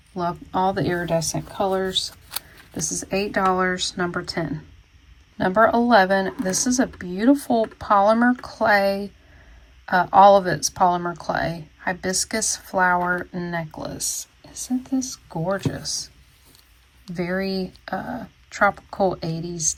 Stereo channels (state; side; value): identical; both; correlation 1.00